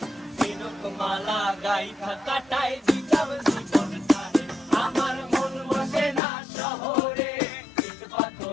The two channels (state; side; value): drops out; right; at 6.2 s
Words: ঝিনুক মালা গাইথা কাটায় দিতাম জীবন তারে। আমার মন বসে না শহরে, ইট